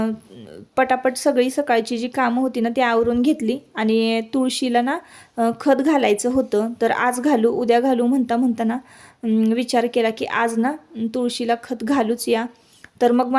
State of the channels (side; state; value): both; identical; correlation 1.00